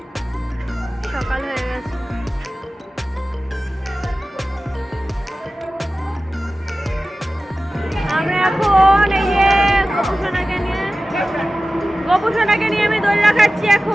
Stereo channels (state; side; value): normal; both; correlation 0.95